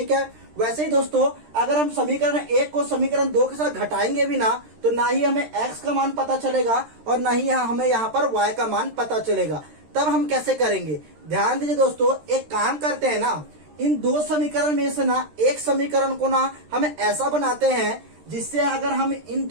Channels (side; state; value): left; late; 13 ms